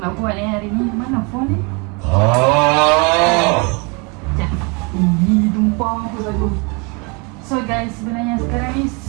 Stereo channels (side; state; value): left; quieter; 31.2 dB